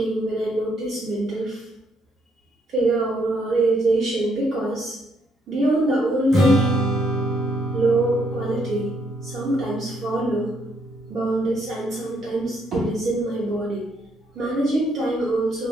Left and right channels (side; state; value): both; normal; correlation 0.72